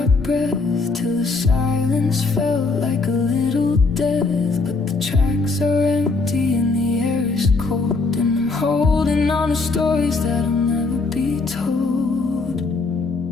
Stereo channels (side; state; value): right; quieter; 3.9 dB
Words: breath till the silence felt like a little death. But the tracks are empty and the air is cold, and I'm holding on to stories that'll never be told.